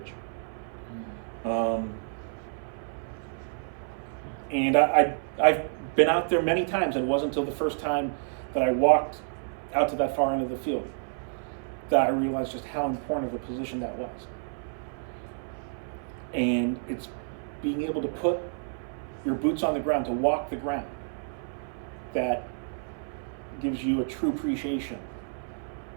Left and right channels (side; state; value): left; silent; 56 dB below the other